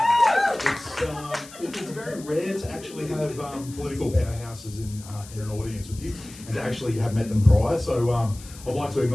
It's very rare to actually have political powerhouses in an audience with you, and to actually have met them prior. So I'd like to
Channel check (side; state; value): left; noise; hiss, 18 dB below the sound